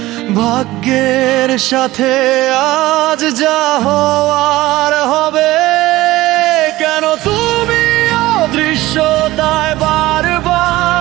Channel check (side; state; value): left; quieter; 17.6 dB